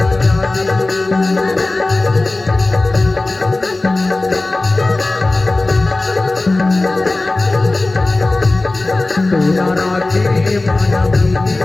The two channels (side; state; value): right; quieter; 3.0 dB